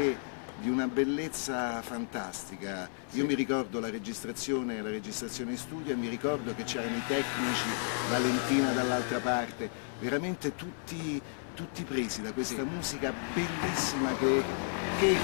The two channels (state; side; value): silent; right; 56 dB below the other